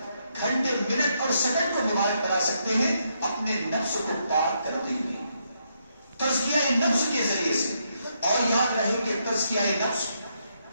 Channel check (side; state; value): both; inverted; correlation -0.78